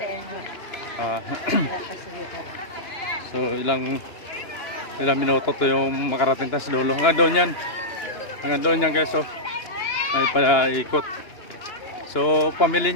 Em. ah, Nakasulitan. so ilang minuto to yung makarating tayo sa dulo. Hanggang doon yan. Hanggang doon yan guys, so may paikot. So pamili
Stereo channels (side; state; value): right; late; 2.9 ms